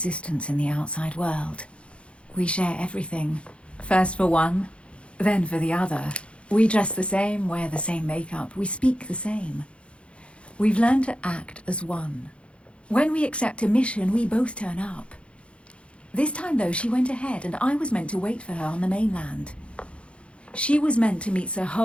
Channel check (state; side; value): late; right; 0.059 ms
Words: in the outside world. We share everything. First for one, then for the other. We dress the same, wear the same makeup, we speak the same. We've learned to act as one. When we accept a mission, we both turn up. This time, though, she went ahead, and I was meant to wait for her on the mainland. She was meant to meet Sir